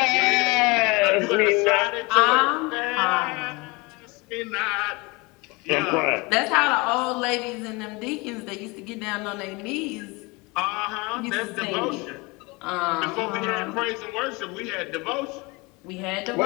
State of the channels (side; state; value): right; quieter; 26.0 dB